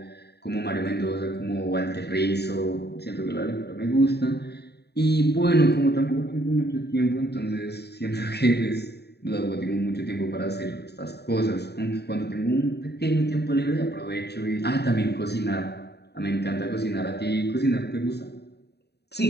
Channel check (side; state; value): right; late; 0.48 ms